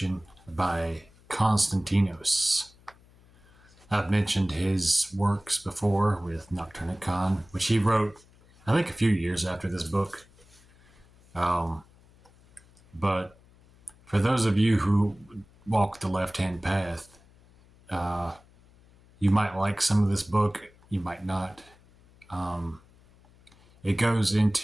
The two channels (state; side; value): noise; left; hum, 28 dB below the sound